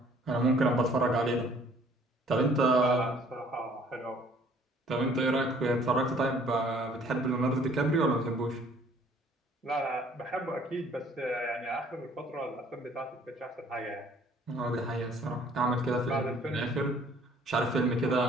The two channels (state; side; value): normal; both; correlation 0.58